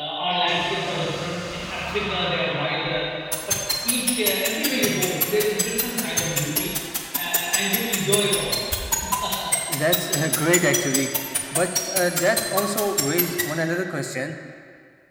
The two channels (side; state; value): both; identical; correlation 1.00